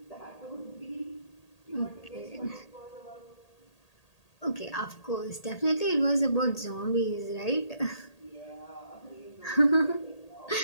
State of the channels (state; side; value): late; right; 1.8 ms